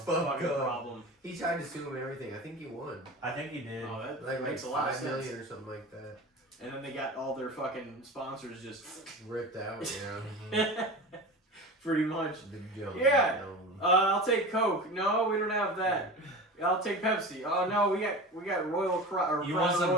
fucking up. problem. He tried to sue him and everything. I think he won. I think he did. Oh, that Like makes a lot of $5 sense. million or something like that. And then they got all their fucking sponsors just Ripped out, yeah. pretty much. The Jones. Yeah. Dome. I'll take Coke. No, we don't have that. I'll take Pepsi. Oh no, we got Royal Crown. You want some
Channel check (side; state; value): both; normal; correlation 0.32